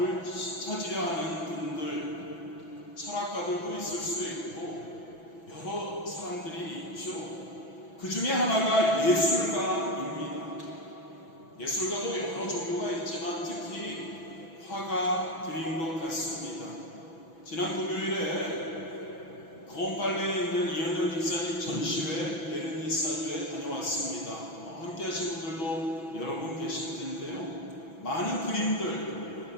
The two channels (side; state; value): right; late; 6.0 ms